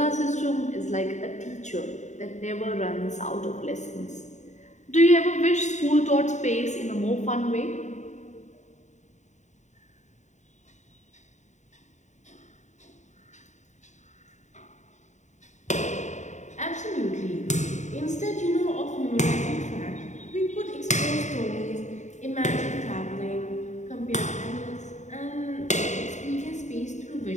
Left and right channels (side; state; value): right; late; 0.34 ms